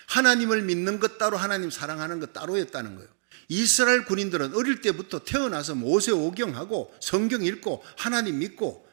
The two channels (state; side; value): silent; left; digital silence